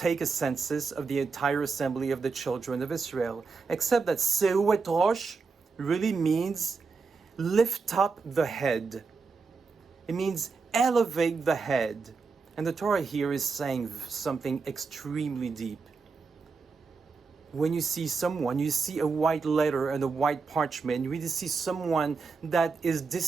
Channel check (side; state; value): left; quieter; 4.7 dB